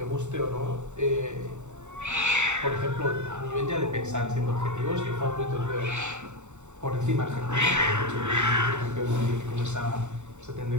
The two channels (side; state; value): left; late; 0.84 ms